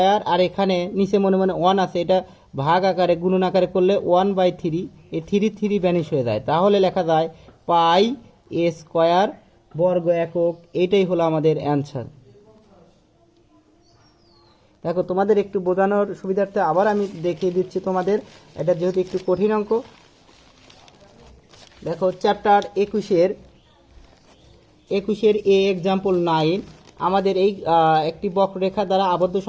আর এখানে নিচে মনে মনে 1 আছে, এটা ভাগ আকারে গুণন আকারে করলে 1/3, এই 3 ভ্যানিশ হয়ে যায়। তাহলে লেখা যায় পাই স্কোয়ার বর্গ একক। এইটাই হলো আমাদের অ্যান্সার। দেখো তোমাদের একটু বোঝানোর সুবিধার্থে আবার আমি দেখিয়ে দিচ্ছি তোমাদের, এটা যেহেতু একটু কঠিন অঙ্ক। দেখো চ্যাপ্টার 21-এর এক্সাম্পল 9, আমাদের এই একটি বক্ররেখা দ্বারা আবদ্ধ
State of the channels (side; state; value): both; identical; correlation 1.00